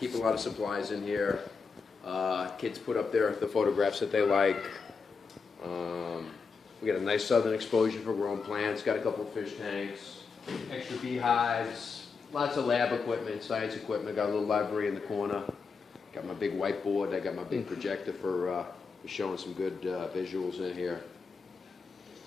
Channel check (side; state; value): right; quieter; 5.0 dB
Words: a lot of supplies in here. Kids put up the photographs that they like. We got a nice southern exposure for growing plants, got a couple of fish tanks, extra beehives, lots of lab equipment, science equipment, got a little library in the corner. Got my big whiteboard, I got my big projector for showing some good visuals in here.